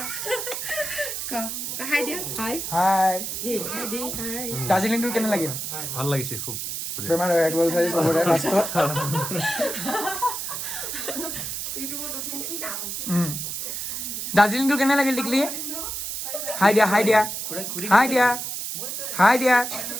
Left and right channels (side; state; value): right; noise; hiss, 4 dB below the sound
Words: দাৰ্জিলিং টুৰ কেনে লাগিল ভাল লাগিছে খুব বেমাৰ হৈ গ'ল চাৰি চবৰে লাষ্টত দাৰ্জিলিংটো কেনে লাগিল টিকলি হাই দিয়া